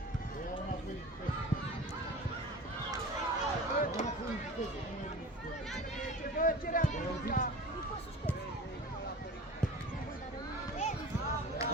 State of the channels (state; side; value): normal; both; correlation 0.37